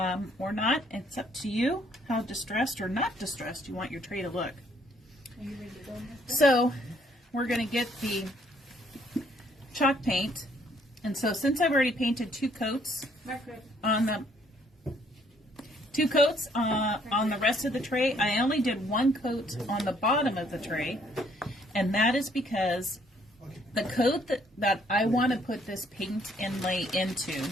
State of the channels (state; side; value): normal; both; correlation 0.65